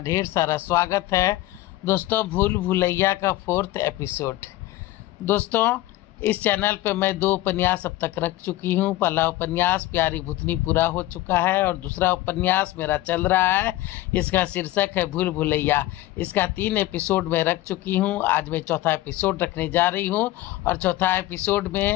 ढेर सारा स्वागत है। दोस्तों, भूल भुलैया का 4th एपिसोड। दोस्तों, इस चैनल पे मैं 2 उपन्यास अब तक रख चुकी हूँ। पहला उपन्यास प्यारी भूतनी पूरा हो चुका है और दूसरा उपन्यास मेरा चल रहा है। इसका शीर्षक है भूल भुलैया। इसका 3 एपिसोड में रख चुकी हूँ। आज मैं चौथा एपिसोड रखने जा रही हूँ और चौथा एपिसोड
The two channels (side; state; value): right; quieter; 16.5 dB